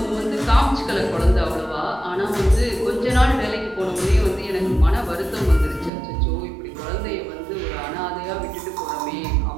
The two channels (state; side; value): drops out; left; at 5.9 s